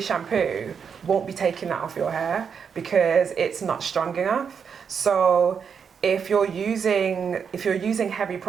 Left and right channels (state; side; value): quieter; left; 6.7 dB